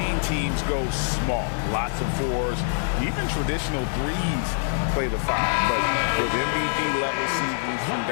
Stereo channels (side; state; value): right; silent; digital silence